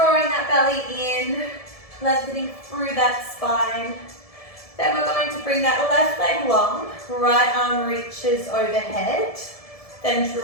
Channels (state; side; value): late; right; 1.7 ms